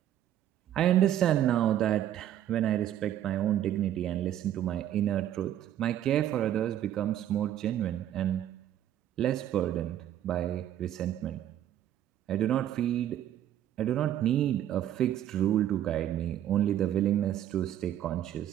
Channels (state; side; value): quieter; left; 11.5 dB